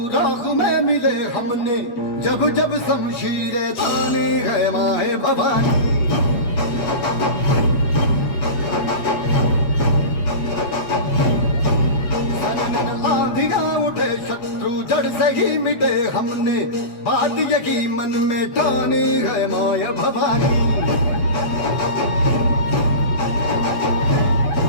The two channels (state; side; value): late; right; 8.2 ms